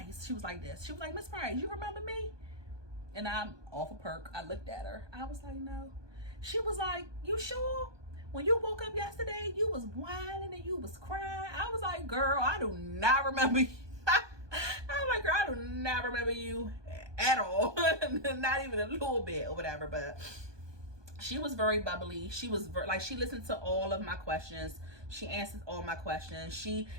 She was like this. She was like, Miss Price, you remember me? and I'm off a perk. I looked at her. I was like, no. She was like, you sure? When you woke up yesterday, you was whining and you was crying. I was like, girl, I do not remember you. I was like, girl, I do not remember you at all. Not even a little bit or whatever. But she was very bubbly. She was she listened to all of my questions. She answered all my questions. She,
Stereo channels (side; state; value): left; late; 1.2 ms